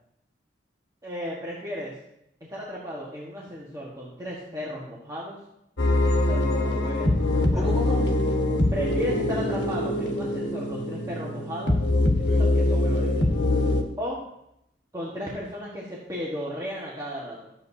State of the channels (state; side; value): normal; both; correlation 0.71